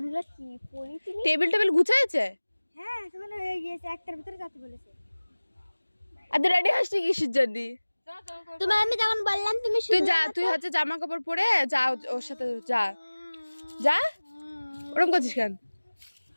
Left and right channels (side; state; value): both; inverted; correlation -1.00